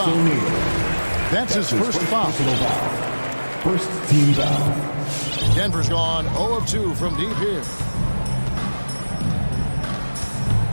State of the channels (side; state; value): both; inverted; correlation -1.00